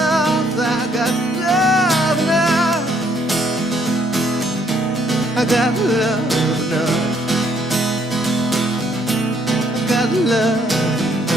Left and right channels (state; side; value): normal; both; correlation 0.67